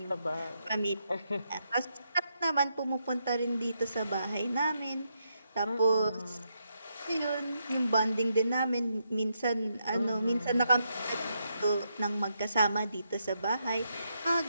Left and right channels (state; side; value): inverted; both; correlation -0.81